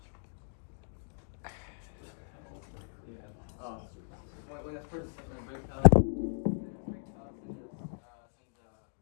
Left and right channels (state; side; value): silent; right; digital silence